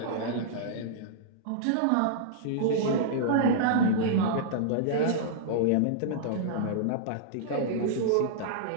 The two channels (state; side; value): different; both; correlation -0.02